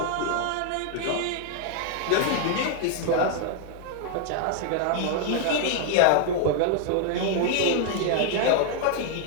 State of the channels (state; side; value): different; both; correlation 0.00